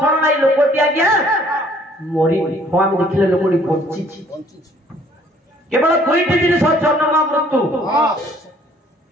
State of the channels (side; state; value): both; normal; correlation 0.59